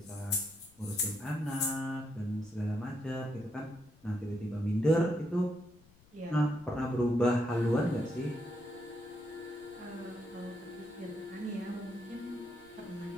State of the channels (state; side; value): noise; left; rumble, 27 dB below the sound